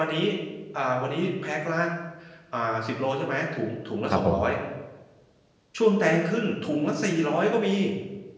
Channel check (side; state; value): both; identical; correlation 1.00